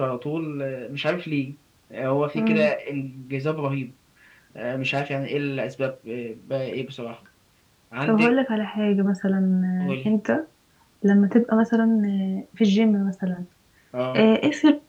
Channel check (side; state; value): both; identical; correlation 1.00